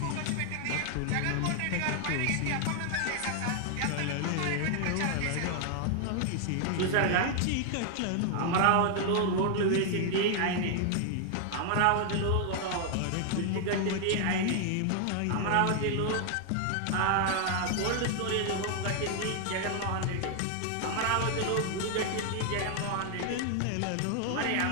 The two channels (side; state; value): both; different; correlation 0.00